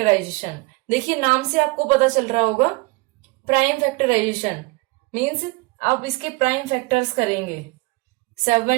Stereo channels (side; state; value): left; quieter; 25.8 dB